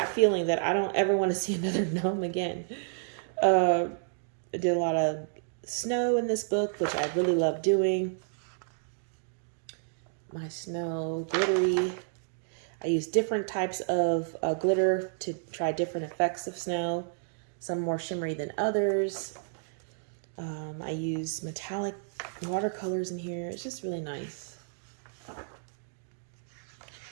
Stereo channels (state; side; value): silent; left; digital silence